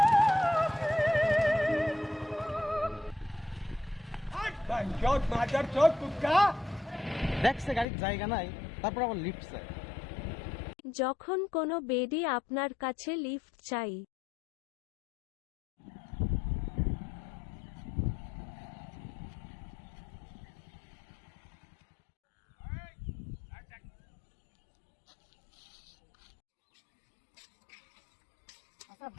দেখছে গাড়ির জায়গা নাই, তারপর আবার লিফট চাই। যখন কোনো বেডি আপনার কাছে লিফট চাই। আচ্ছা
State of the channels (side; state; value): right; drops out; at 7.9 s